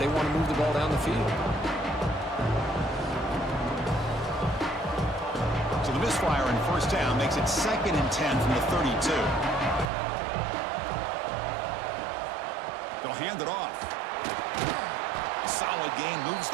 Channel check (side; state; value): left; drops out; at 9.9 s